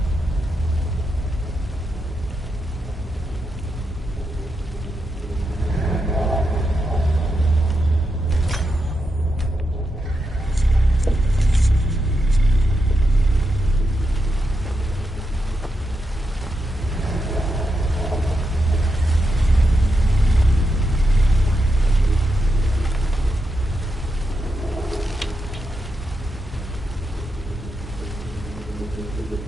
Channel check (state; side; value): normal; both; correlation 0.85